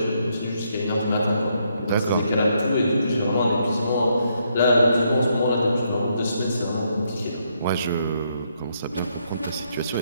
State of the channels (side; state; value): both; inverted; correlation -0.75